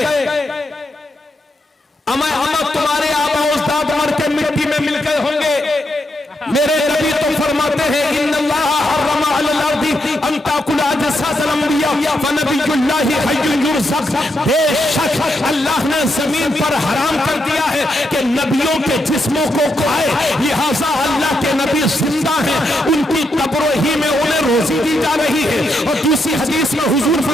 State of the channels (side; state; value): both; normal; correlation 0.82